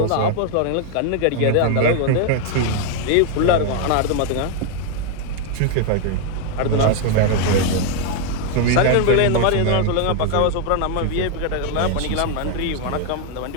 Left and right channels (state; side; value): different; both; correlation 0.00